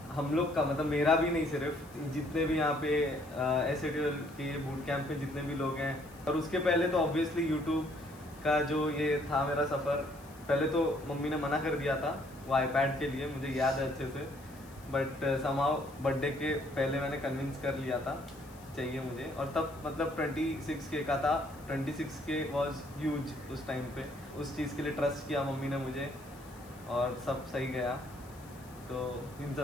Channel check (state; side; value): noise; left; hiss, 24 dB below the sound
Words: हम लोग का मतलब मेरा भी नहीं, सिर्फ जितने भी यहाँ पे SATL के बूट कैंप में जितने भी लोग हैं। और उसके पहले तो ऑब्वियसली यूट्यूब का जो ये था मेरा सफ़र, पहले तो मम्मी ने मना कर दिया था वो iPad के लिए, मुझे याद है अच्छे से, बट समहाउ बर्थडे के पहले मैंने कन्विंस कर लिया था चाहिए मुझे। और तब मतलब 26K का था, 26K वॉज ह्यूज उस टाइम पे। उस चीज़ के लिए ट्रस्ट किया मम्मी ने मुझे और सब सही गया, तो इन